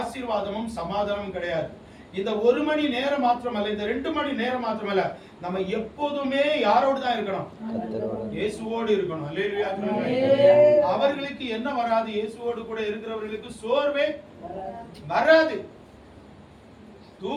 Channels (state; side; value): identical; both; correlation 1.00